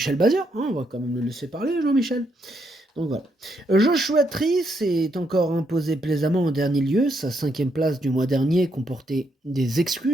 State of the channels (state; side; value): normal; both; correlation 0.77